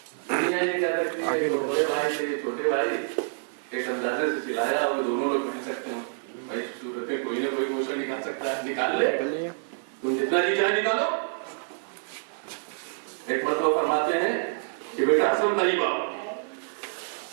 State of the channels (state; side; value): silent; left; 60 dB below the other